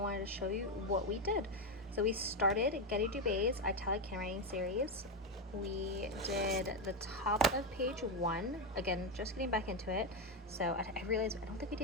to show you what we did. So we started Getty Dubé's Italic Handwriting series. We did the top of page 1. Again, just getting back into it. So I realized I don't think we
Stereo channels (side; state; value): both; normal; correlation 0.08